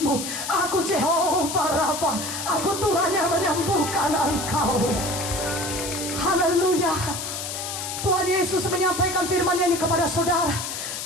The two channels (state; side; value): noise; left; hiss, 6 dB below the sound